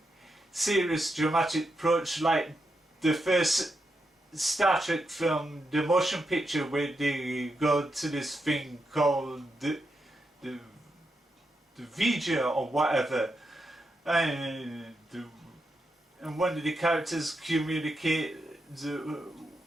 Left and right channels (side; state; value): both; normal; correlation 0.85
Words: serious dramatic approach like the first Star Trek film, the motion picture, where they go to this thing called the Vija or whatever, and one of the characters communicate